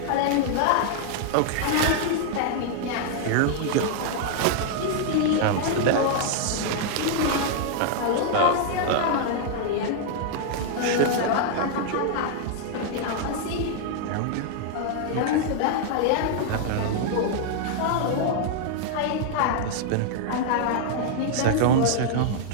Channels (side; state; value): both; different; correlation 0.00